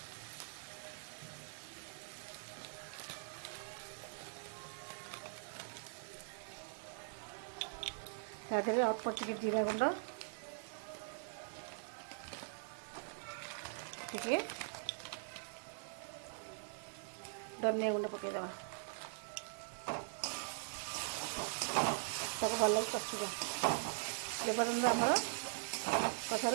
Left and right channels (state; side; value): silent; left; digital silence